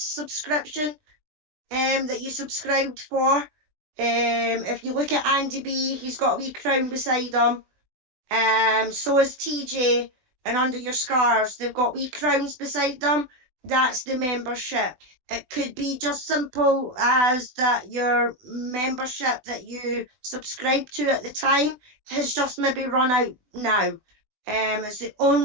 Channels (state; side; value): late; left; 20 ms